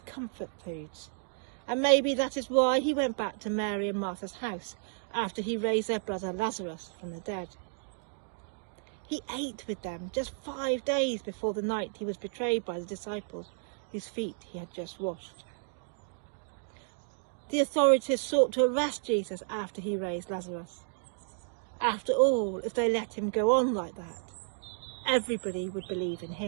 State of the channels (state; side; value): silent; left; digital silence